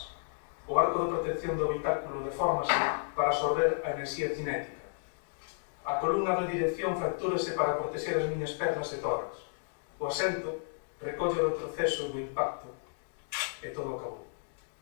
O arco de protección do habitáculo deformase para absorber a enerxía cinética. A columna de dirección fractúrase para protexer as miñas pernas e tórax. O asento recolle o retroceso do impacto e todo acabou.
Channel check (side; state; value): right; silent; digital silence